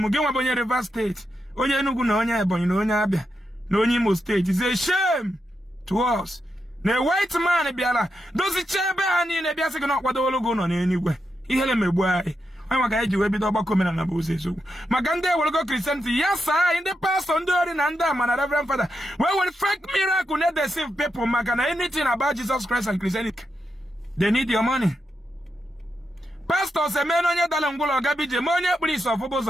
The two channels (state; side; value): normal; both; correlation 0.85